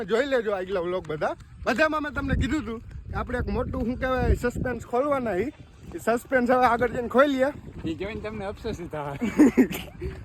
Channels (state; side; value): identical; both; correlation 1.00